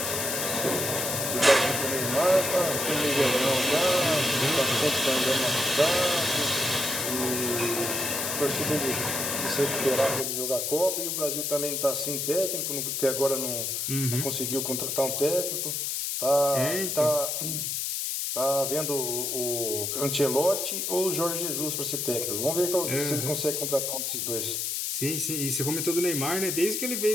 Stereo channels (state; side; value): noise; left; hiss, 1 dB below the sound